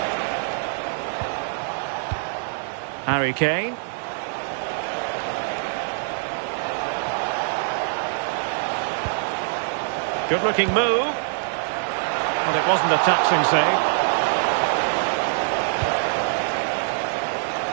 Harry Kane. Good-looking move. But it wasn't a taxing save.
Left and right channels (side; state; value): left; silent; digital silence